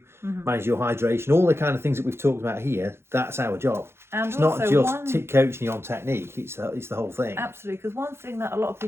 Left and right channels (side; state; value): left; late; 0.12 ms